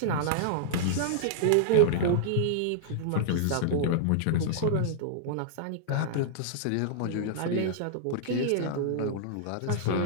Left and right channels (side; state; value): both; different; correlation -0.01